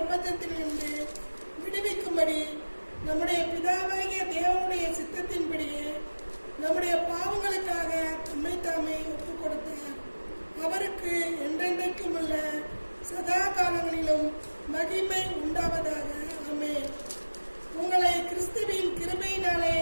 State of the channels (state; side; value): inverted; both; correlation -1.00